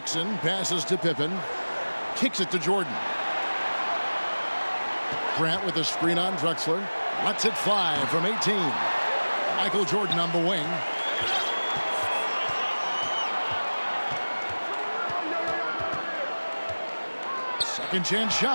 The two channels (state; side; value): inverted; both; correlation -1.00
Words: passes to Pippen. Kicks it to Jordan. Grant with a screen on Drexler. Lets it fly from 18. Michael Jordan on the wing. Second chance